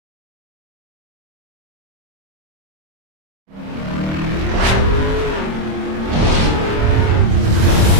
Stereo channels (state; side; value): late; left; 26 ms